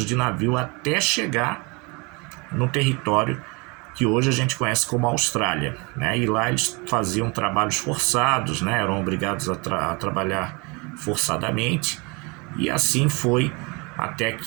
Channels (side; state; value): left; quieter; 28.9 dB